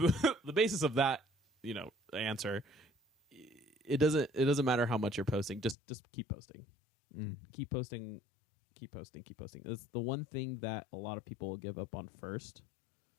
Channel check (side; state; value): right; drops out; at 5.8 s